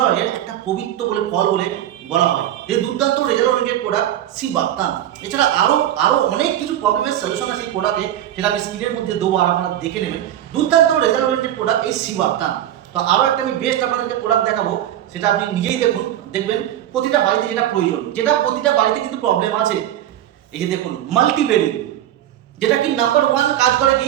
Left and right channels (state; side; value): quieter; left; 11.9 dB